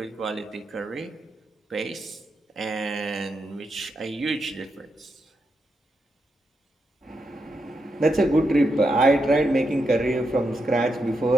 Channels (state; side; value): normal; both; correlation 0.84